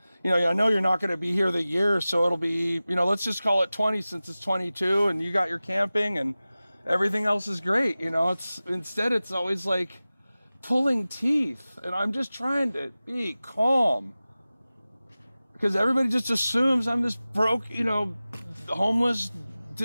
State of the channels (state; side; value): inverted; both; correlation -0.97